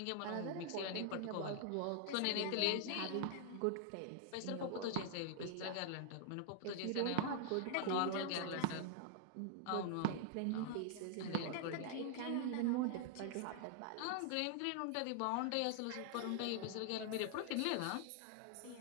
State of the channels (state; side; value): different; both; correlation 0.00